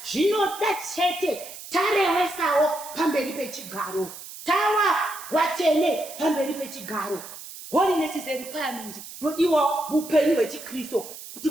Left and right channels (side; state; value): right; noise; hiss, 13 dB below the sound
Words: zvinoda chete tarewesawo pamberi pechigaro, tawa vatsvene pamberi pechigaro. Holiness is a requirement nodiwa muupenyu hwechiKristo kuti